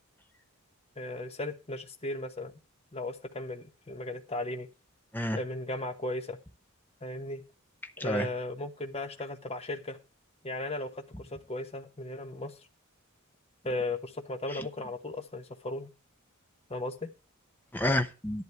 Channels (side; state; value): both; normal; correlation 0.47